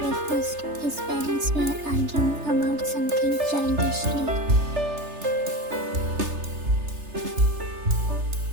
His parents were arguing about something childishly.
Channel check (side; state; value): left; late; 3.3 ms